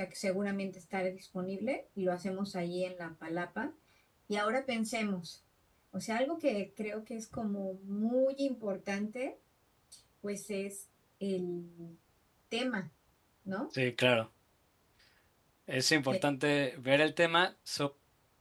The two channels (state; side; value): identical; both; correlation 1.00